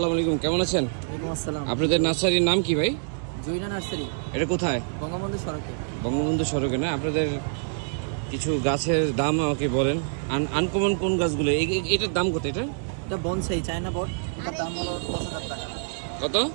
আলাইকুম, কেমন আছেন? আপনাদের নার্সারির নাম কি ভাই? জৈনা নার্সারি। এটা কোথায়? বঙ্গবন্ধু সড়কে। বঙ্গবন্ধু সড়কে না? আপনাদের কিছু গাছের দাম আমাকে বলেন। আনকমন কোন গাছগুলো? এটার দাম কত? এটা বনসাই চায়না বট, এটার দাম হলো 10,000 টাকা। কত?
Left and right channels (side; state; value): left; silent; 61 dB below the other